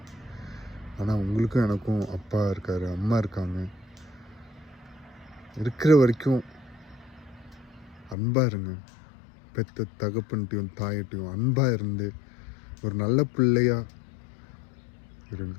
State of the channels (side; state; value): right; drops out; at 8.2 s